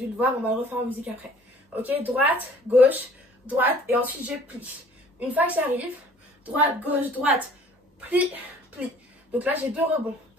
le voir. On va le refaire en musique après. Ok. Droite, gauche, droite. Et ensuite, je plie. Une fois que j'arrive, droite, gauche, droite. Plie, plie. Donc là, j'ai 2 rebonds.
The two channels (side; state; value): both; normal; correlation 0.53